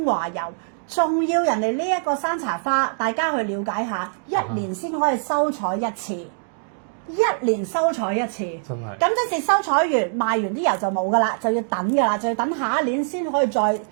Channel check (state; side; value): silent; left; digital silence